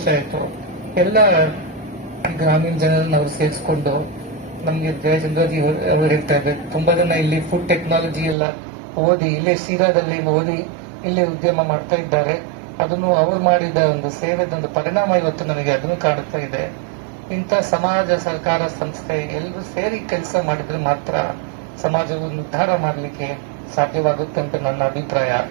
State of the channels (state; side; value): drops out; left; at 8.3 s